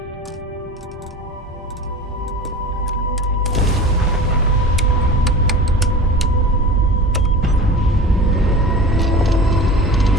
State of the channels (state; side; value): normal; both; correlation 0.35